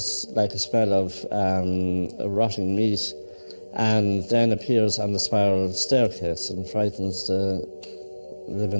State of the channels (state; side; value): inverted; both; correlation -1.00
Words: like a smell of rotting meat, and then appears on the spiral staircase and frightens the